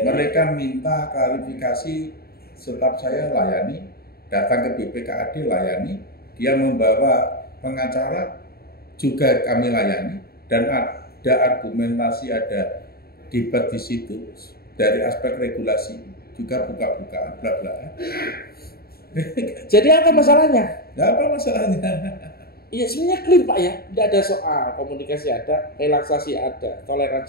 Mereka minta klarifikasi, staf saya layani, datang ke BPKAD layani, dia membawa pengacara juga kami layani, dan ada argumentasi, ada debat di situ dari aspek regulasi juga buka-bukaan bla-bla. Jadi apa masalahnya? Nggak apa masalahnya. Iya sebenarnya clear Pak ya, tidak ada soal, komunikasi ada, relaksasi ada,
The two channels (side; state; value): right; late; 0.45 ms